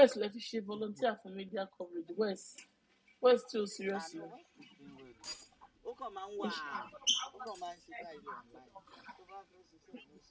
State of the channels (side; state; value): both; identical; correlation 1.00